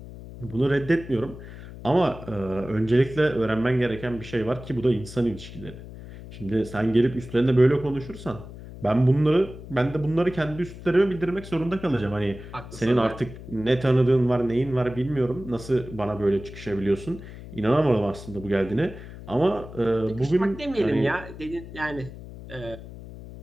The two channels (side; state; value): left; noise; hum, 14 dB below the sound